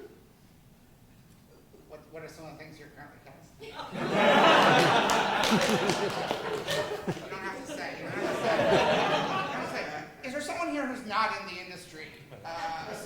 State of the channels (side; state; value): both; identical; correlation 1.00